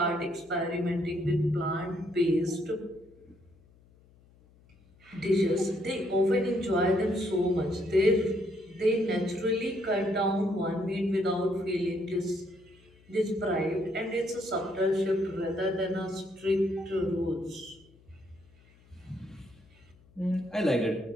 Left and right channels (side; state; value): left; noise; hum, 28 dB below the sound